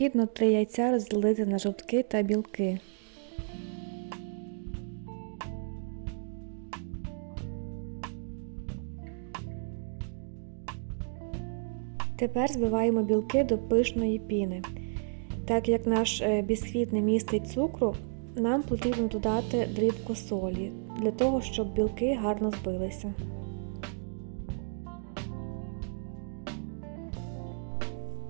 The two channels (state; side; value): silent; left; digital silence